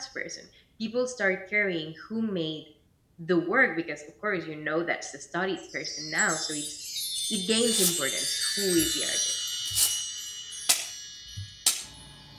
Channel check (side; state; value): both; identical; correlation 1.00